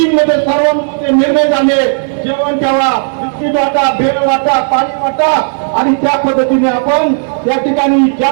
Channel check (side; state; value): left; silent; digital silence